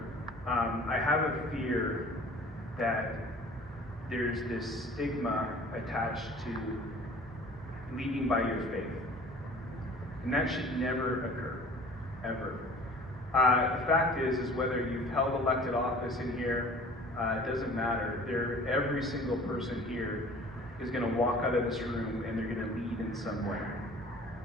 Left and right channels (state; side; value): normal; both; correlation 0.47